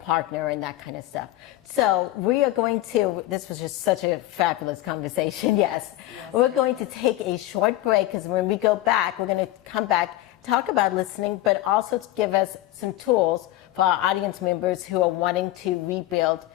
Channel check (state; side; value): quieter; right; 15.6 dB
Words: and that kind of stuff. So we are going to, this was just such a fabulous conversation, yes. We're going to take a short break, because when we go back, we're going to come back, talk about listening, but also to give us some tools for our audience members who are wanting to rebuild